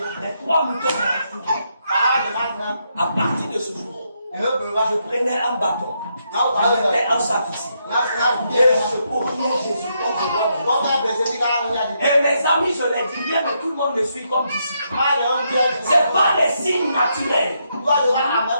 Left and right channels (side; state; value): both; inverted; correlation -0.79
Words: Les 3 moutons m'ont entouré. À partir de ce jour, je prenais un bâton. Je mettais un sac ici. Et je courais Jésus comme je vois. Et mes amis, je les dis bien, mais tout le monde me suit comme disciple. Ce n'est pas les signes naturels.